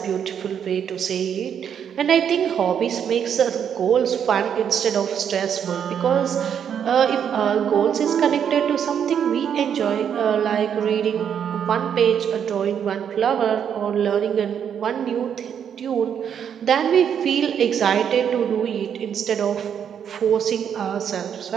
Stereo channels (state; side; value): quieter; left; 8.3 dB